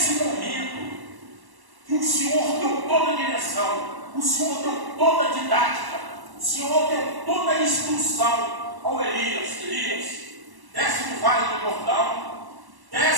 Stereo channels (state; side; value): late; left; 1.1 ms